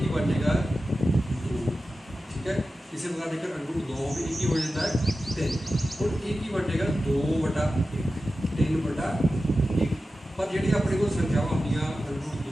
बनेगा 2, ठीक है। इसी प्रकार देखकर √2 भी एक ही हो जाता है 3, और एक ही बनेगा 2/1 3/1। पर जी अपने को संख्यावां होंगे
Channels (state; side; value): normal; both; correlation 0.93